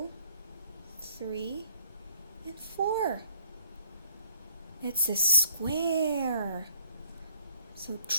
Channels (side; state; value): both; inverted; correlation -0.63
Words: 3, and 4. It's a square. So